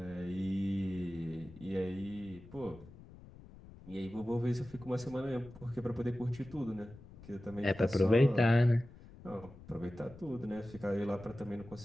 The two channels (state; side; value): noise; left; rumble, 19 dB below the sound